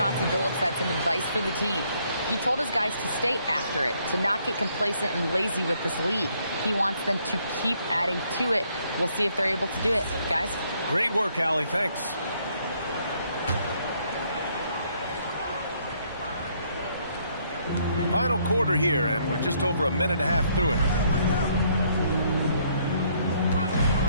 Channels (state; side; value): inverted; both; correlation -0.68